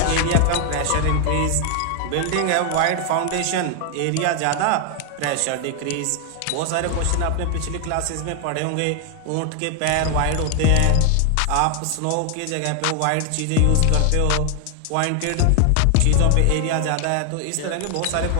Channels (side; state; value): both; different; correlation 0.00